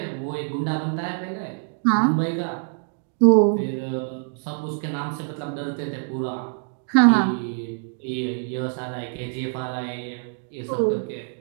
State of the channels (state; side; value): silent; left; 62 dB below the other